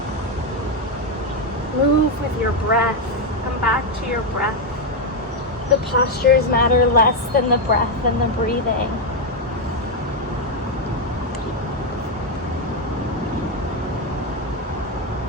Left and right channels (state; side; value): normal; both; correlation 0.04